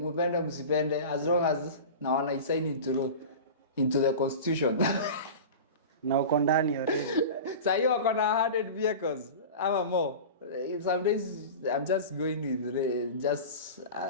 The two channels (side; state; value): both; inverted; correlation -0.32